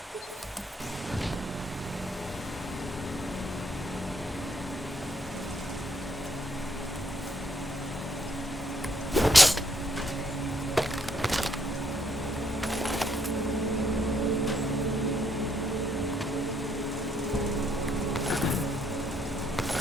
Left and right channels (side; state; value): both; normal; correlation 0.71